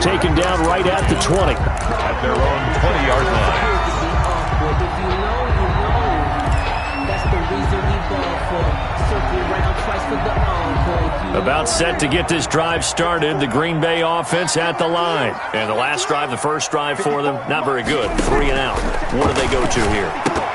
down right at the 20. At their own 20-yard line. About set to get this drive started, the Green Bay offense at the line. And the last drive, the first drive for them, not very good. 3 and out. What do they go to here?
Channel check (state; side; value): identical; both; correlation 1.00